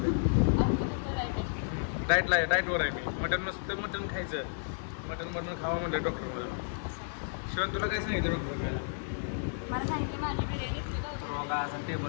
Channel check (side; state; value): right; silent; digital silence